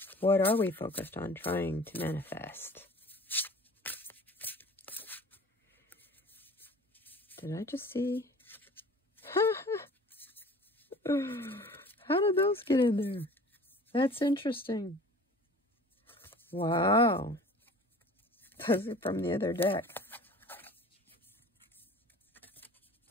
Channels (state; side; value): normal; both; correlation 0.45